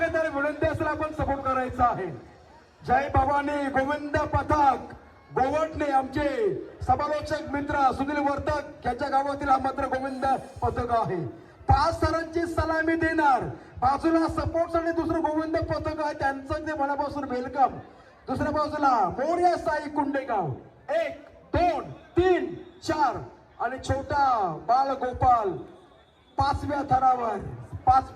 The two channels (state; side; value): identical; both; correlation 1.00